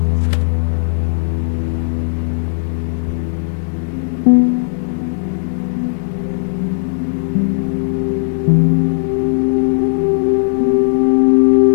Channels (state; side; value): silent; right; digital silence